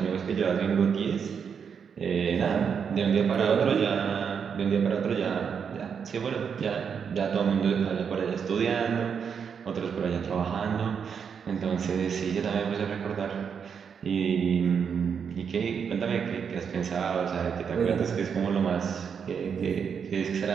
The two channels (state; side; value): quieter; left; 6.9 dB